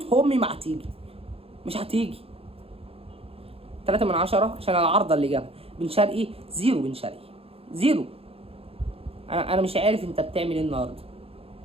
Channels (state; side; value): late; left; 0.28 ms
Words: امي ما هتيجي، مش هتيجي. 3/10 عشان العارضه اللي جابها. بن شرقي 0، بن شرقي 0. انا مش عارف انت بتعمل ايه النهارده،